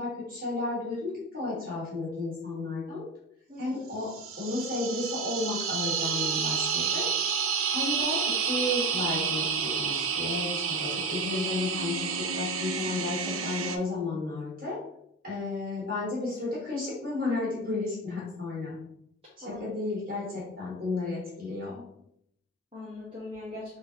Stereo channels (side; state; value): both; normal; correlation 0.24